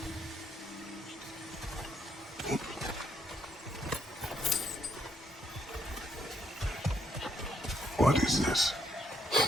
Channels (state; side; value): normal; both; correlation 0.73